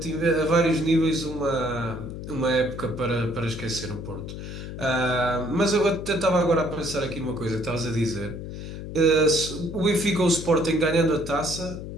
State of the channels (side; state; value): left; noise; hum, 9 dB below the sound